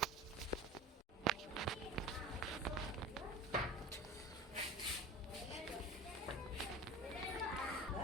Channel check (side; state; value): both; normal; correlation 0.35